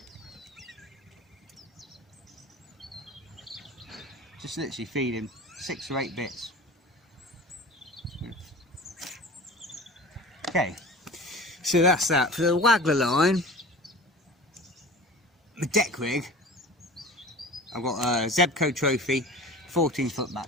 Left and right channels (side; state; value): both; normal; correlation 0.38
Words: Just literally feeding 6 or 8 bits. Okay, so that's that. For the Waggler line, the deck rig, I've got a Zebco Trophy 14-foot